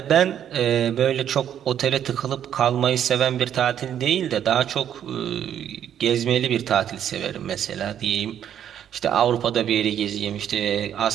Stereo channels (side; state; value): left; quieter; 9.8 dB